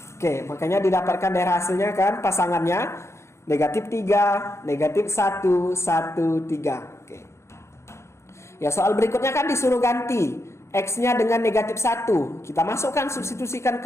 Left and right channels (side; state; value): right; late; 0.13 ms